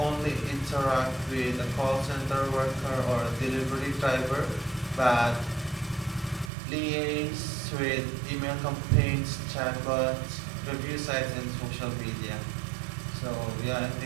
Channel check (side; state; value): left; drops out; at 6.5 s